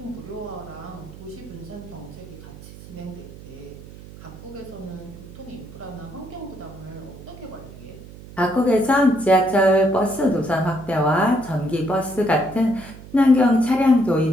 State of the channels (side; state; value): right; noise; hum, 16 dB below the sound